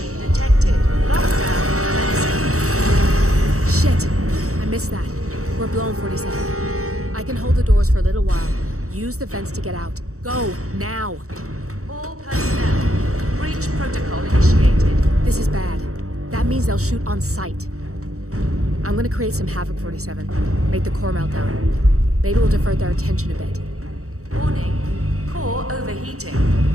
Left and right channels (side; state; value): left; late; 0.64 ms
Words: detected. Lockdown. Shit! I missed that. We're blown, 47. I can hold the doors for a little while. Use the vents to get out. Go, now! All personnel. Breach protocol initiated. This is bad. That means they'll shoot on sight. I'm gonna create some havoc, 47. Make the core melt down. Maybe we'll divert their attention a bit. Warning. Core overheating.